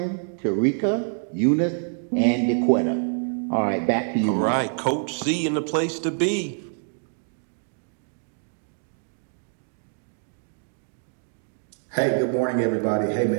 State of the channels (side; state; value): left; silent; 61 dB below the other